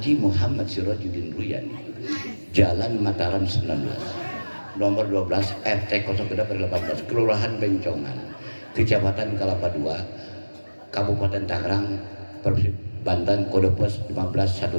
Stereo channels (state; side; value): inverted; both; correlation -1.00